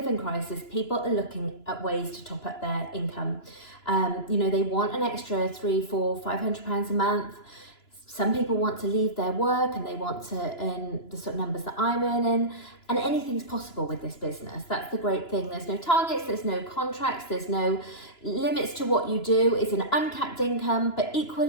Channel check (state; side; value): late; right; 2.9 ms